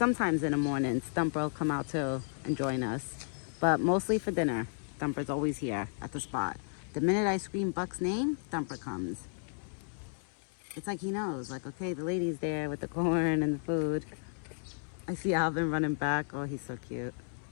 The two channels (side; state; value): right; silent; 56 dB below the other